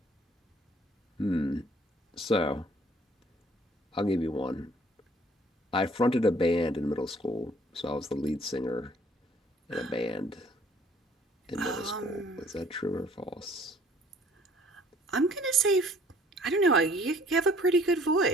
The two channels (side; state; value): both; normal; correlation 0.57